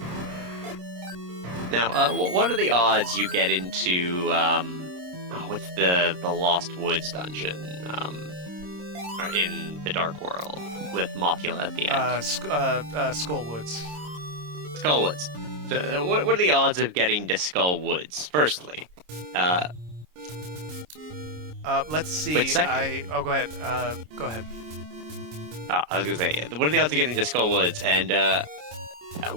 Now, what are the odds you get into, what's the Lost Woods dungeon, in the Dark World, with Mothula at the end? Skullwoods. Skullwoods. So, what are the odds of getting to Skullwoods, firstly? Let's see. But second- Oh, go ahead. Go ahead. I was gonna say, what are the odds of getting to Skullwoods, and,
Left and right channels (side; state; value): left; late; 26 ms